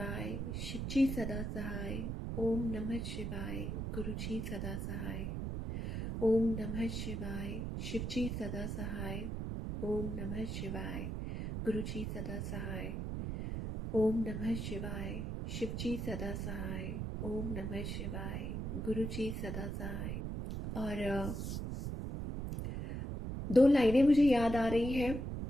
शिव जी सदा सहाय। ओम नमः शिवाय। गुरु जी सदा सहाय। ओम नमः शिवाय। शिव जी सदा सहाय। ओम नमः शिवाय। गुरु जी सदा सहाय। ओम नमः शिवाय। शिव जी सदा सहाय। ओम नमः शिवाय। गुरु जी सदा सहाय। और दो लाइनें मुझे याद आ रही हैं।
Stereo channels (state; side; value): noise; right; rumble, 3 dB below the sound